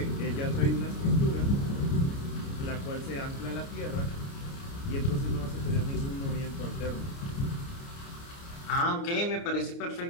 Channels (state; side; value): late; right; 29 ms